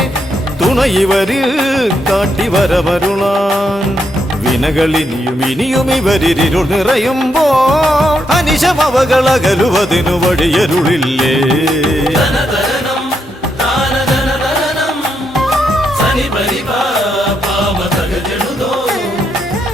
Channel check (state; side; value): normal; both; correlation 0.79